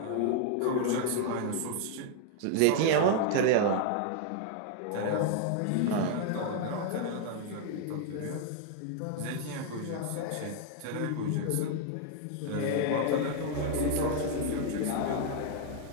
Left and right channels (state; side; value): different; both; correlation 0.00